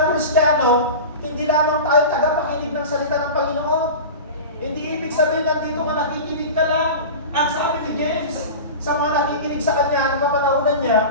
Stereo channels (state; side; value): inverted; both; correlation -0.30